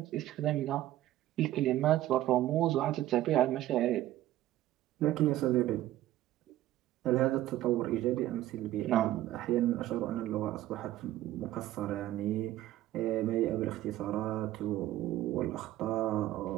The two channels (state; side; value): quieter; left; 14.2 dB